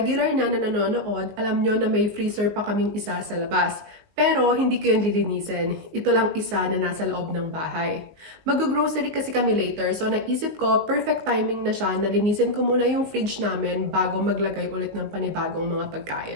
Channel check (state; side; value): late; left; 19 ms